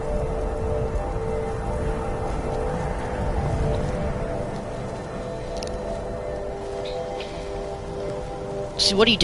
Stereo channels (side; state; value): both; identical; correlation 1.00